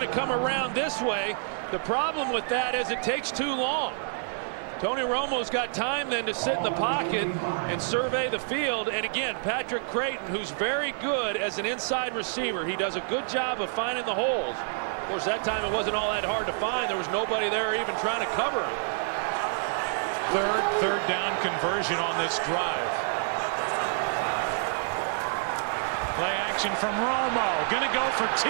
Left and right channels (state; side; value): silent; left; 59 dB below the other